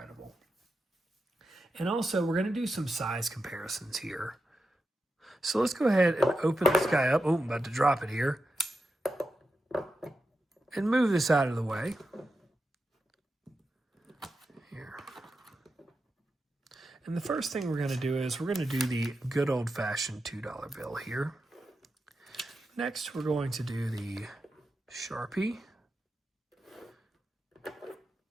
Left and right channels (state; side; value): normal; both; correlation 0.89